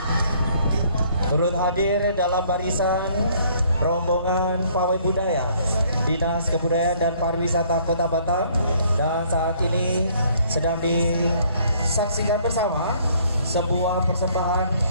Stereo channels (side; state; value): both; inverted; correlation -0.61